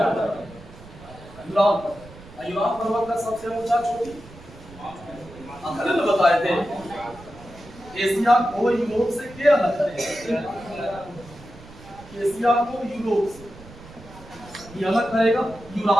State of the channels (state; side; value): noise; right; rumble, 19 dB below the sound